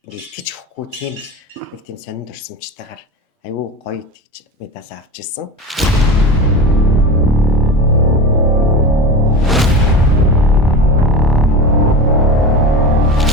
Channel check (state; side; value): normal; both; correlation 0.28